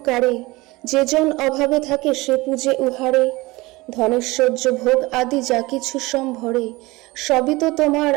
যে জন অভাবে থাকে সে পূজে উহারে। ধনেশ্বর্য ভোগ আদি যা কিছু সম্ভরে, সবই তো তোমার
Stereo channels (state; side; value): quieter; left; 21.7 dB